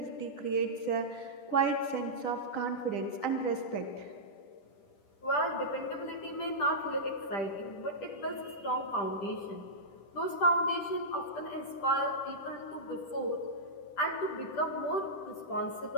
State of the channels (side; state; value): right; late; 10 ms